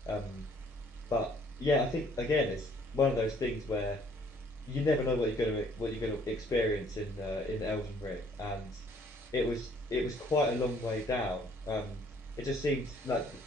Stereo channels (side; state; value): both; normal; correlation 0.61